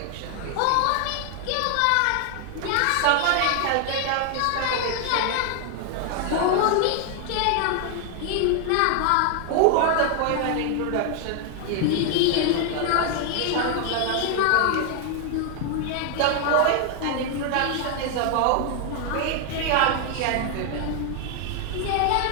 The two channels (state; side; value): different; both; correlation 0.00